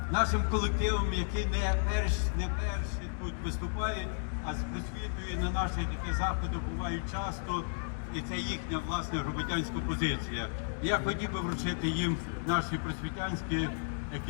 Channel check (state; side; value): silent; right; digital silence